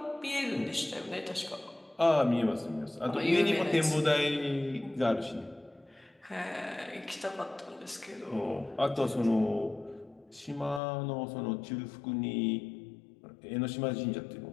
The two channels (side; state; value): right; drops out; at 10.8 s